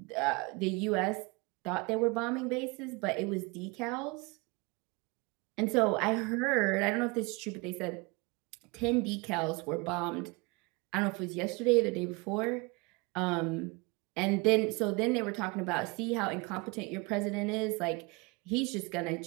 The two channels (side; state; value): left; quieter; 27.0 dB